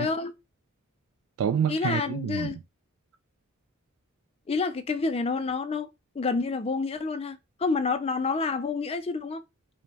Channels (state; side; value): normal; both; correlation 0.33